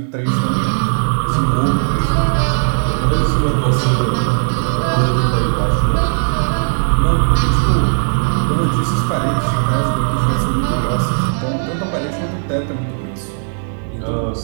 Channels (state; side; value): silent; left; digital silence